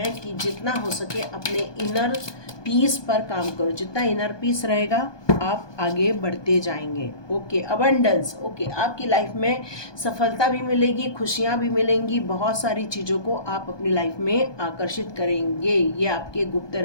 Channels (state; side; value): late; right; 1.2 ms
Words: कि जितना हो सके अपने इनर पीस पर काम करो। जितना इनर पीस रहेगा आप आगे बढ़ते जाएंगे। ओके, अबंडेंस, ओके, आपकी लाइफ में सफलता भी मिलेगी, खुशियाँ भी मिलेंगी, बहुत सारी चीज़ों को आप अपनी लाइफ में आकर्षित करेंगे। ये आपके गुप्त